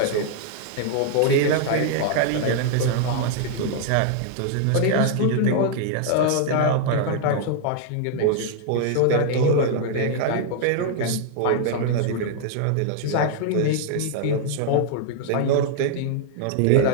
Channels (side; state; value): both; different; correlation 0.00